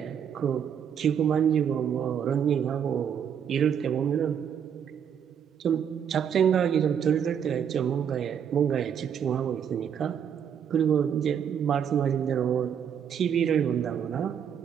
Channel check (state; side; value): quieter; left; 8.2 dB